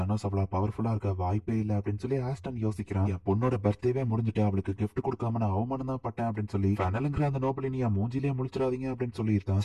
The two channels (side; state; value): both; identical; correlation 1.00